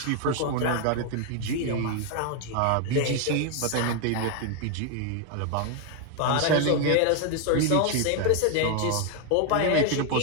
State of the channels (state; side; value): different; both; correlation 0.01